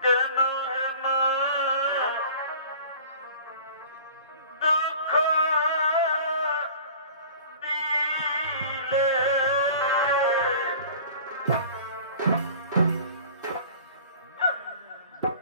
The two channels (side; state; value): both; inverted; correlation -0.44